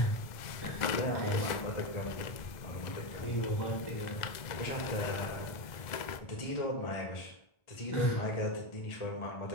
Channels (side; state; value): right; late; 1.4 ms